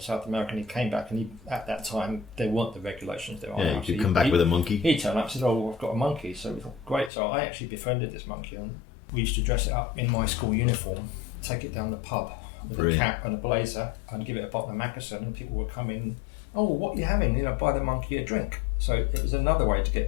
South America and he came back, and at that time there weren't the regulations there are Yeah, now. you could come back with a monkey. He turned up and said, I've got a monkey. So we thought, great. So I actually befriended this monkey, and we used to dress it up in my school uniform, take it down the pub with Brilliant. a cap and a blazer, and give it a bottle of Mackerson, and people would come in, what are you having? Buy the monkey a drink. So it was another way to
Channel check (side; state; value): right; drops out; at 7.1 s